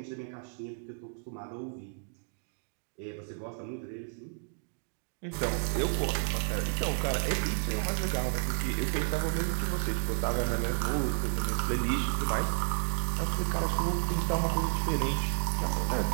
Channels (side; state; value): left; silent; digital silence